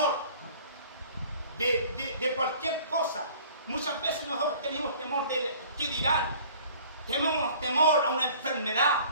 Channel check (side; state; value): both; inverted; correlation -0.49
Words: de cualquier cosa. Muchas veces nosotros tenemos temor de qué dirán. Tenemos temor a una enfermedad.